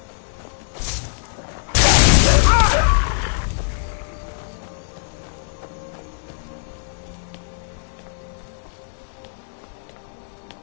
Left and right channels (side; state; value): right; silent; digital silence